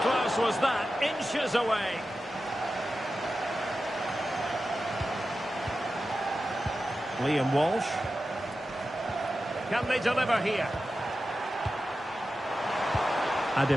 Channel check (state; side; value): normal; both; correlation 0.92